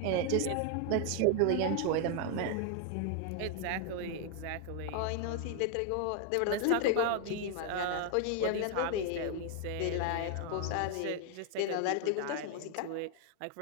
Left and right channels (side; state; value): both; different; correlation 0.00